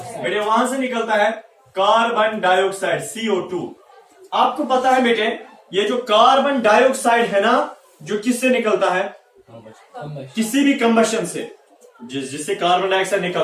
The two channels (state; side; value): identical; both; correlation 1.00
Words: वहां से निकलता है कार्बन डाइऑक्साइड, CO2। आपको पता है बेटे, ये जो कार्बन डाइऑक्साइड है ना, जो किससे निकलता है, किसी भी कंबशन से, जिससे कार्बन डाइऑक्साइड